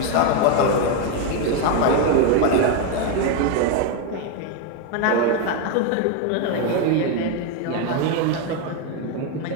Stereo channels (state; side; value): different; both; correlation 0.02